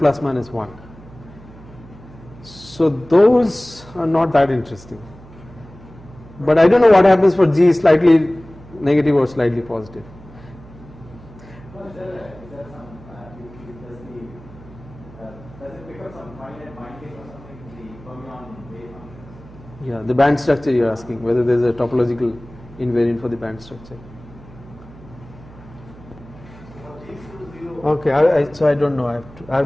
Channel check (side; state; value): right; noise; hum, 20 dB below the sound